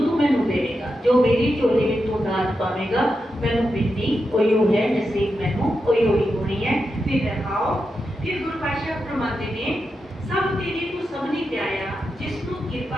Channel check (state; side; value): normal; both; correlation 0.88